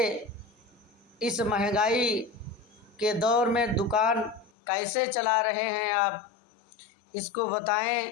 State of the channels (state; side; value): drops out; right; at 4.5 s